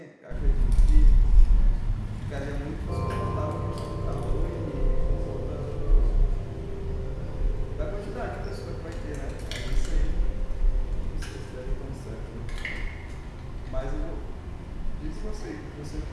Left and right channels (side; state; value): both; identical; correlation 1.00